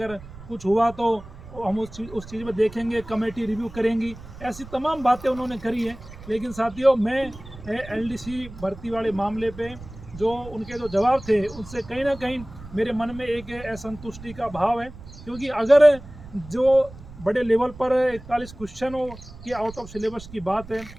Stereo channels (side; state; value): right; noise; rumble, 16 dB below the sound